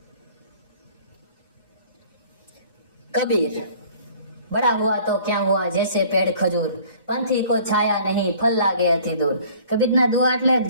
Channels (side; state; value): both; inverted; correlation -0.52